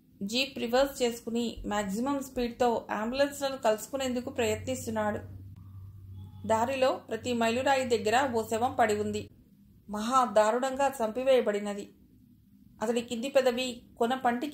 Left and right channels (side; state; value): both; identical; correlation 1.00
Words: జీప్ రివర్స్ చేసుకుని మాక్సిమం స్పీడ్తో అంబులెన్స్లను కలుసుకునేందుకు ప్రయత్నిస్తున్నాడు. దారిలో ప్రతి మైలురాయి దగ్గర ఓ శవం పడి ఉంది. మహా దారుణంగా చంపివేయబడినది. అతడి కింది పెదవి కొన పంటి